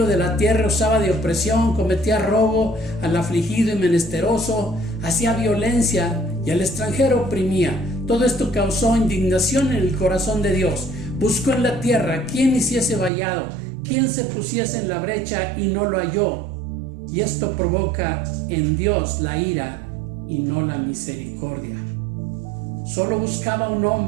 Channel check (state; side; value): drops out; left; at 13.1 s